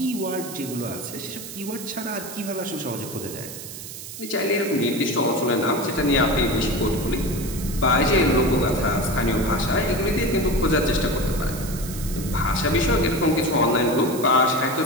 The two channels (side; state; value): right; noise; hiss, 11 dB below the sound